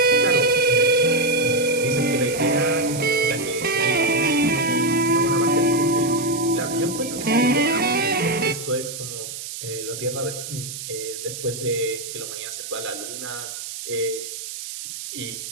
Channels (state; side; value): noise; right; hiss, 9 dB below the sound